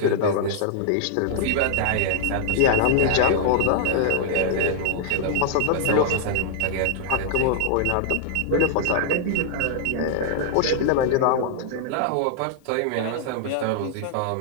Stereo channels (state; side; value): different; both; correlation -0.01